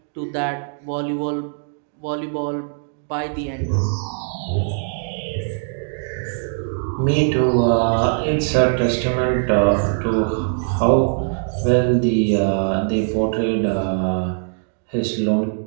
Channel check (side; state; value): left; silent; 62 dB below the other